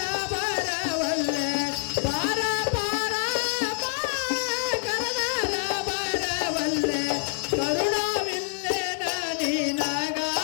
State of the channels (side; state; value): right; silent; digital silence